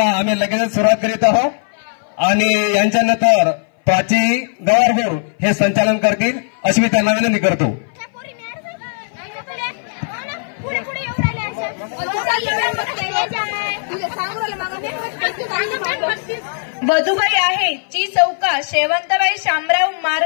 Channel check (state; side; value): silent; right; 59 dB below the other